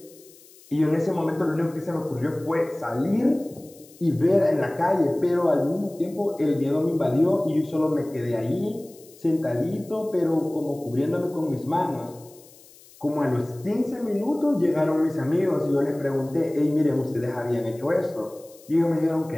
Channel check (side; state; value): left; noise; hiss, 24 dB below the sound